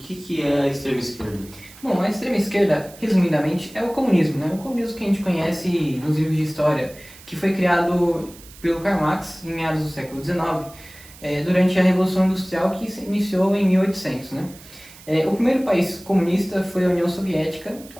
é a extrema esquerda. Bom, a extrema esquerda, resumidamente, é o comunismo, né? O comunismo que a gente conhece nos livros de história, que foi criado pelo Karl Marx em meados do século XIX, durante a Revolução Industrial que se iniciou em 1800, né? O primeiro país comunista foi a União Soviética,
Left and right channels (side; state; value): right; noise; hiss, 20 dB below the sound